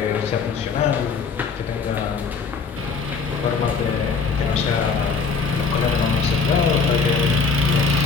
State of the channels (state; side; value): quieter; right; 5.1 dB